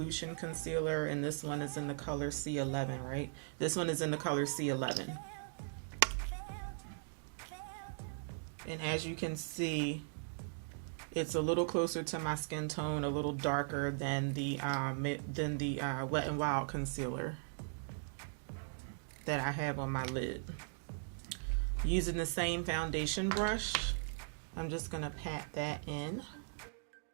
concealer, and this one is in the color C11, right? This one is in the color C11. And as you can see, it's a little closer to my skin tone, a little darker than the Wet n Wild concealer that I have on my lid. Using the same foundation brush, I'm just gonna pat that in.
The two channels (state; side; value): silent; left; digital silence